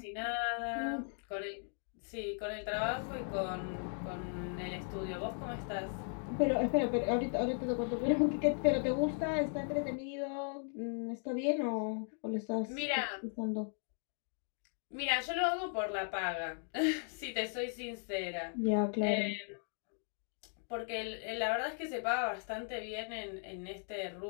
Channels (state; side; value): silent; right; 53 dB below the other